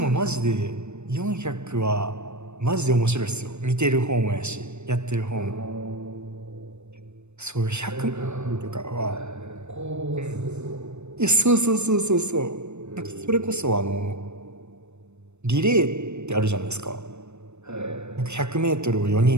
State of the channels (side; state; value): left; late; 0.82 ms